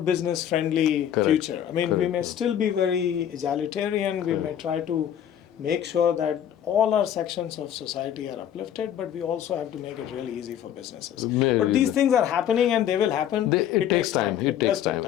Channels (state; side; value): quieter; right; 10.1 dB